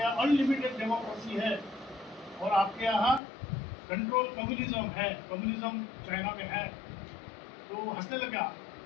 अनलिमिटेड डेमोक्रेसी है और आपके यहाँ कंट्रोल कम्युनिज्म है, कम्युनिज्म चाइना में है. तो वो हंसने लगा.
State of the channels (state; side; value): drops out; right; at 3.2 s